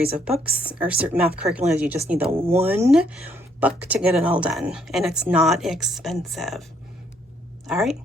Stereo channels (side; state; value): both; normal; correlation 0.69